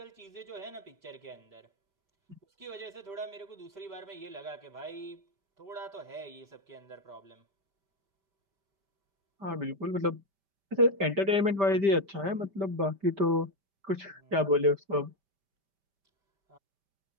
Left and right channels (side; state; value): left; late; 5.1 ms